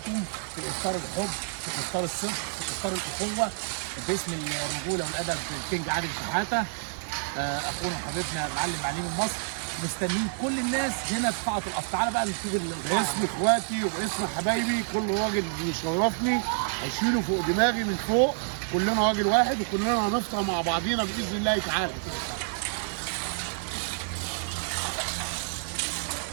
في افطار الحب، في افطار الصدق، في افطار الاخوه باسم الرجوله والادب الكينج عادل شحاته. اخونا وحبيبنا المعلم معلم مصر، مستنيين كل الناس هنا في قاعه القصر. تعالى بقى نشوف باسم اخواتي وباسم حبايبي كل راجل بيشرفني هشيله فوق دماغي من فوق. كلنا راجل واحد وكلنا هنفطر مع بعضينا باذن الله تعالى.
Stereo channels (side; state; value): left; silent; digital silence